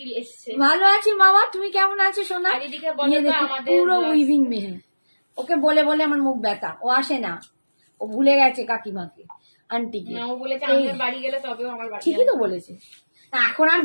এসছে। ভালো আছি মামা, তুমি কেমন আছো সোনা? আর এদিকে বলো তো আমাদের পুরো উইভিং মে হ্যাঁ, ওকে বলে বলে আমার মুখ ব্যথা, ও আসে না, ও ভুলে গেছে কাকিমাকে, আন্টিকে। না ও বলেছে আমাদের বাড়ি গেলে তবেও আমার বাড়ি ঠিকই তো বলেছে, এখন আর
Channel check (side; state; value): both; inverted; correlation -1.00